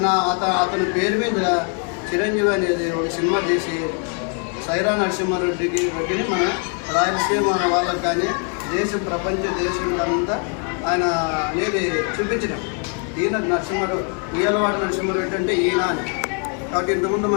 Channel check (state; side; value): quieter; right; 39.0 dB